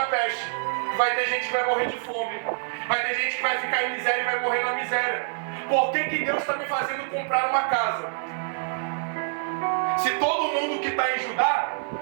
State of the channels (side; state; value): left; silent; digital silence